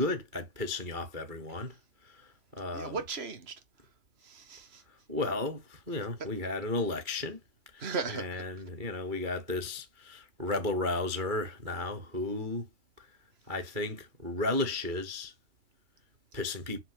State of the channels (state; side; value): late; left; 2.4 ms